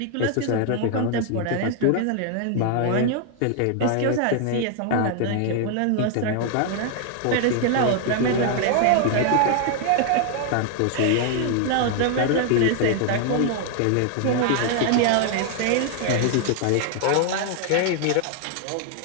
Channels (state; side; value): different; both; correlation 0.00